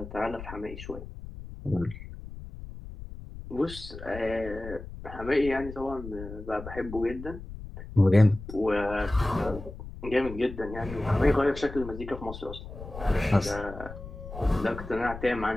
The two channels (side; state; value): left; noise; rumble, 12 dB below the sound